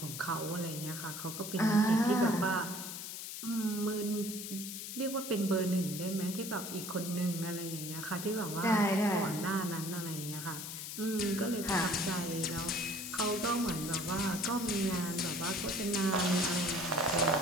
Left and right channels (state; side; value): noise; left; hiss, 7 dB below the sound